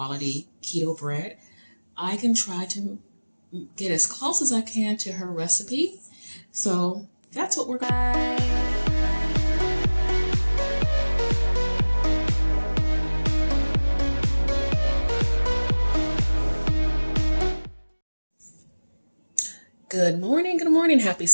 keto bread. I can try to get as close as I can to her recipe. So that's what we're going to do. Good morning, happy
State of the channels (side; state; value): both; inverted; correlation -1.00